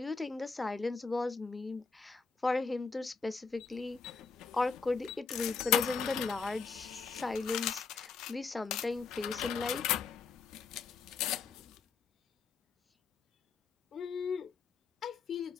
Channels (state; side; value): quieter; right; 4.9 dB